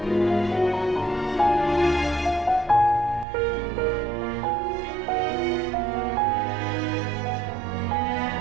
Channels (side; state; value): left; drops out; at 3.2 s